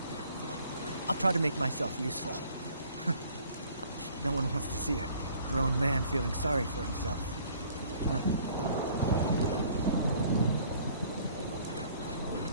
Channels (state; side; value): inverted; both; correlation -0.56